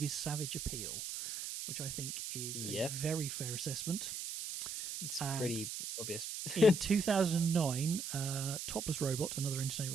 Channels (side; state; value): right; noise; hiss, 5 dB below the sound